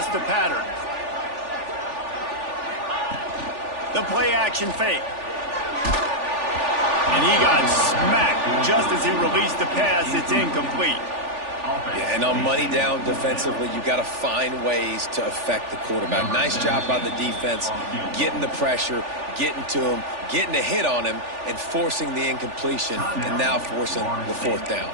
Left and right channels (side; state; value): left; late; 3.4 ms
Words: the pattern. The play action fake. And he got smacked just as he released the pass. It's incomplete. Yeah, and on money down defensively, you got to find ways to affect the quarterback. Nice job by the defense, getting the pressure, getting to him, getting a hit on him, and forcing the incompletion, and now forcing the 4th down.